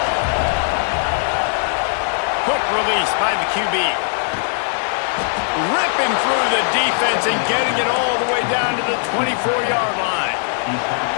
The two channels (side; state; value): right; silent; digital silence